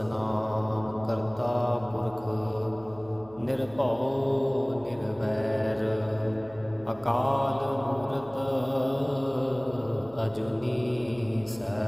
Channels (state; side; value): noise; right; hum, 24 dB below the sound